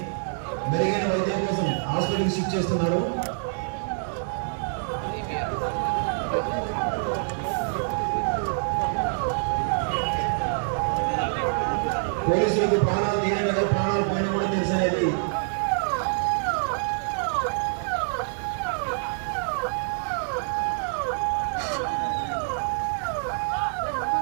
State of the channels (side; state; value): left; silent; 61 dB below the other